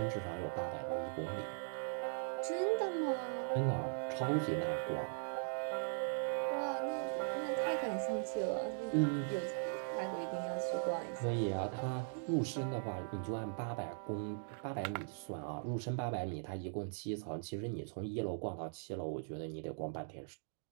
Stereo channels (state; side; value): silent; left; digital silence